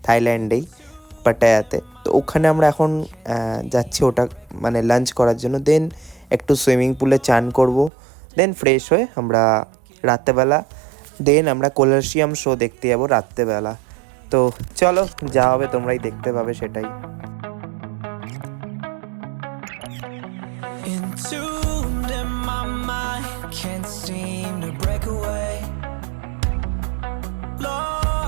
থাইল্যান্ডেই, পাটায়াতে। তো ওখানে আমরা এখন যাচ্ছি ওটা মানে লাঞ্চ করার জন্য। দেন একটু সুইমিং পুলে চান করব, দেন ফ্রেশ হয়ে আমরা রাত্রেবেলা দেন আমরা কলাসিয়াম শো দেখতে যাবো রাত্রেবেলা। তো চলো যা হবে তোমরাই দেখতে পাবে সেটাই। Entombed in my mind, can't seem to break away.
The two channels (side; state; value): left; drops out; at 7.9 s